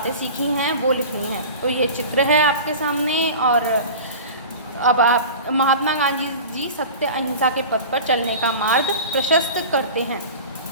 सीखी हैं वो लिखनी है। तो ये चित्र है आपके सामने। और अब आप महात्मा गांधी जी सत्य अहिंसा के पथ पर चलने का मार्ग प्रशस्त करते हैं।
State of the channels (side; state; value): both; inverted; correlation -0.35